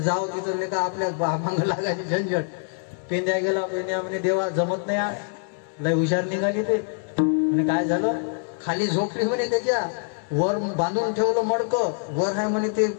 तिथं का आपल्या मागं लागायची झंझट. पेंद्या गेला. पेंद्या म्हणे देवा जमत नाही, लय हुशार निघाली ते. म्हणे काय झालं, खाली झोपली म्हणे, त्याच्या वर बांधून ठेवलं मडकं, वर आहे म्हणे ते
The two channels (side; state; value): right; silent; 62 dB below the other